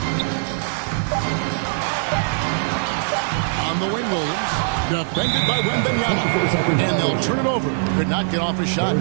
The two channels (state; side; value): silent; left; 65 dB below the other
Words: On the wing, Williams. Defended by Wembanyama. And they'll turn it over. Could not get off a shot.